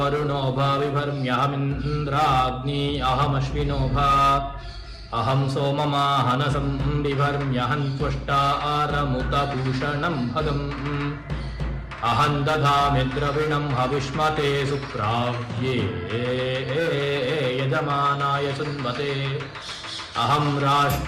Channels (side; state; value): both; identical; correlation 1.00